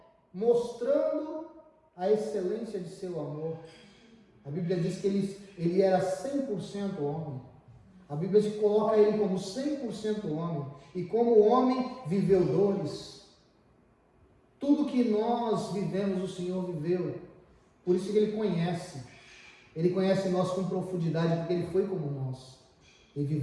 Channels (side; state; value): both; identical; correlation 1.00